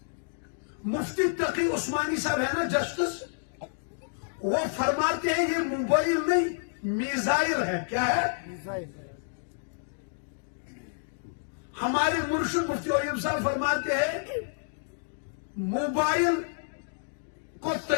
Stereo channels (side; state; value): right; silent; digital silence